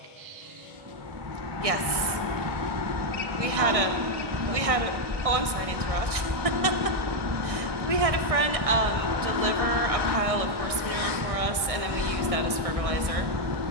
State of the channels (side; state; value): left; late; 1.6 ms